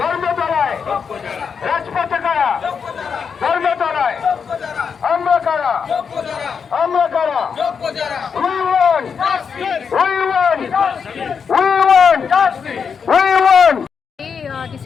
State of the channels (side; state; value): right; quieter; 6.3 dB